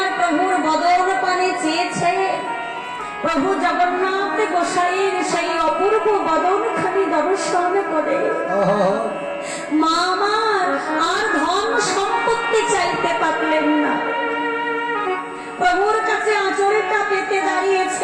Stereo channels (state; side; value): identical; both; correlation 1.00